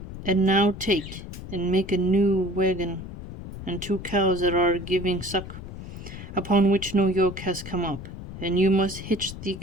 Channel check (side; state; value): left; noise; rumble, 10 dB below the sound